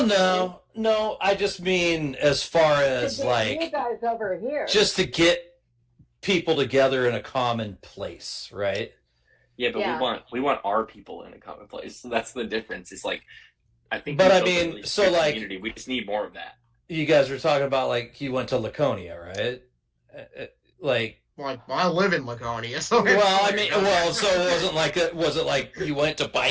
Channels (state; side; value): identical; both; correlation 1.00